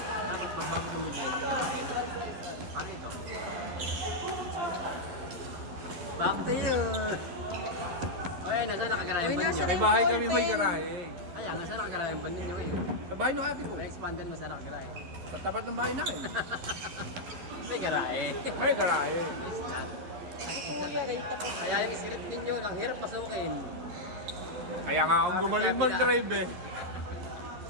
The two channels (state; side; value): late; left; 11 ms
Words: Dapat pagbago ng mga paano ito? Back to you! Okay, nasa nakagarayan ba ninyo? May bahay kami may garahe. Kaya, nasa nakagarayan ba ninyo eh? Sa bahay ng ate ko. May expanded mo sa nakagarayan. Sa tapat ng bahay namin. May garahe. May garahe. Kaya yung script ninyo, ang hirap pasukin. Kaya nga akong gumaling mag-drive eh.